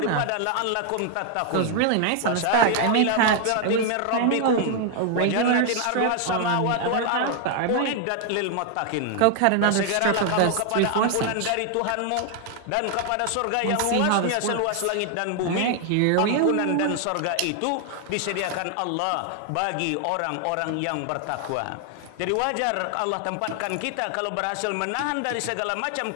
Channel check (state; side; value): different; both; correlation 0.00